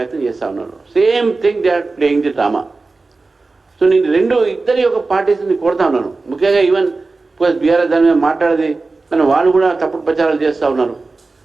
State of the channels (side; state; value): left; quieter; 3.7 dB